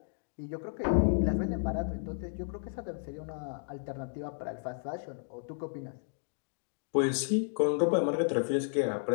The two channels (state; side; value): silent; right; digital silence